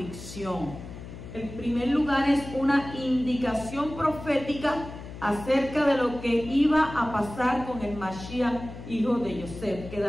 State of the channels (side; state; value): left; noise; hum, 13 dB below the sound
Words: En primer lugar, es una indicación profética acerca de lo que iba a pasar con el Mashiach, hijo de Yosef,